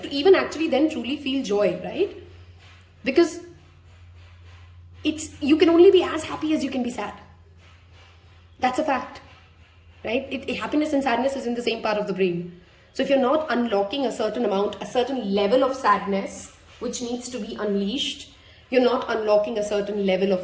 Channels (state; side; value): identical; both; correlation 1.00